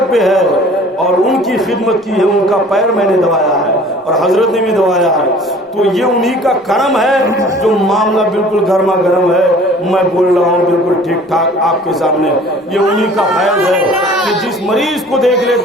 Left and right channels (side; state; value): both; normal; correlation 0.49